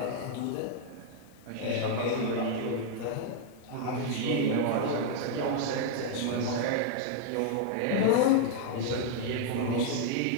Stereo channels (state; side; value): different; both; correlation 0.00